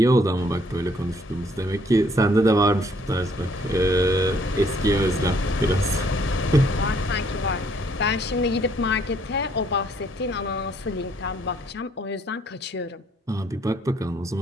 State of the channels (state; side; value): normal; both; correlation 0.65